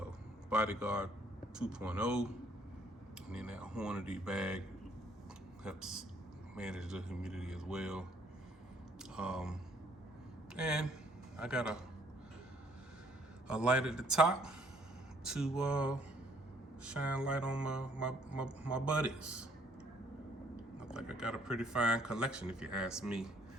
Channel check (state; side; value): normal; both; correlation 0.64